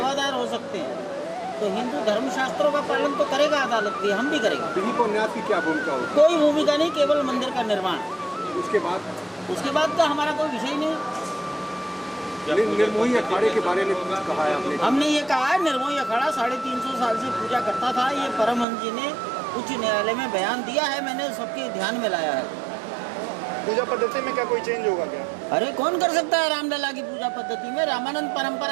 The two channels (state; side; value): drops out; left; at 18.7 s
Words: हो सकते हैं। तो हिंदू धर्मशास्त्रों का पालन तो करेगा अदालत भी, हम भी करेंगे। दिलीप और न्यास की क्या भूमिका होगी? कोई भूमिका नहीं, केवल मंदिर का निर्माण। उसके बाद का हमारा कोई विषय नहीं। निर्मोही अखाड़े के बारे में कुछ कहा है आपने? हमने ये कहा है, निर्मोही अखाड़ा 350 साल से पूजा करता था। ये परमहंस जी ने उच्च न्यायालय में बयान दिया है, मैंने सबके ध्यान में लाया है। पूजा पद्धति में क्या कोई चेंज होगा क्या? अरे कौन कर सकता है रामलला की पूजा पद्धति में? रामानंद